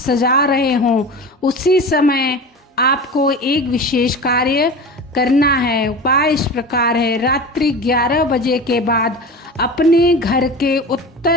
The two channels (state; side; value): normal; both; correlation 0.32